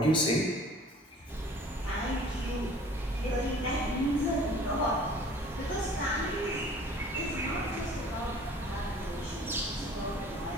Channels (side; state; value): both; normal; correlation 0.49